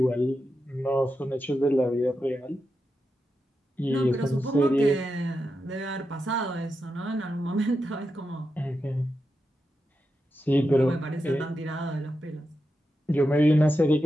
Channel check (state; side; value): normal; both; correlation 0.88